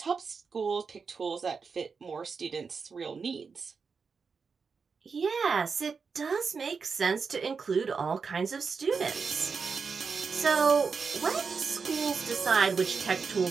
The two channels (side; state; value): left; quieter; 5.3 dB